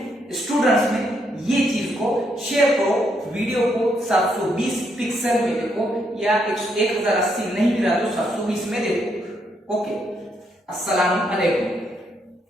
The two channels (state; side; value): normal; both; correlation 0.76